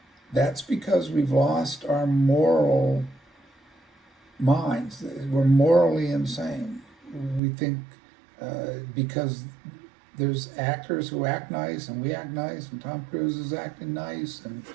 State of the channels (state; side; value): drops out; left; at 7.4 s